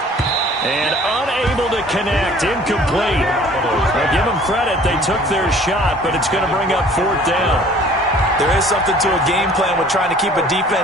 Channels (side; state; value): both; normal; correlation 0.52